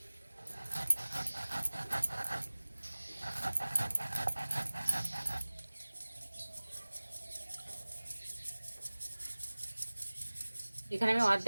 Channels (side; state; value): both; inverted; correlation -1.00